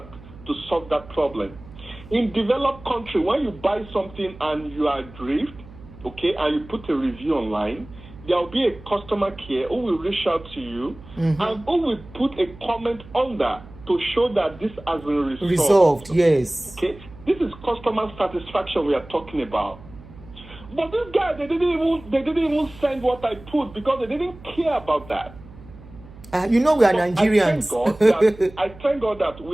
problem. In developed country, when you buy something and you are aggrieved, okay, and you put a review online, there will be a customer care who will reach out to you and who will put a comment under to show that this has been resolved. Yes. Okay, this is customer satisfaction we are talking about. But this guy, they didn't even send what I put because they didn't care about that. We are Nigerians. I thank God that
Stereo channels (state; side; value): noise; right; hum, 19 dB below the sound